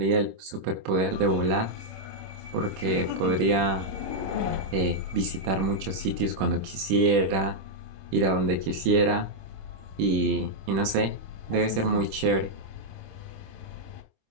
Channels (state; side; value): late; left; 26 ms